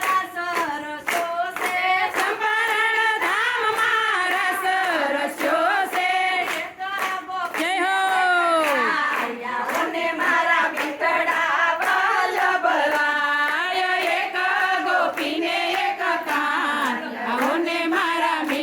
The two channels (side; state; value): both; identical; correlation 1.00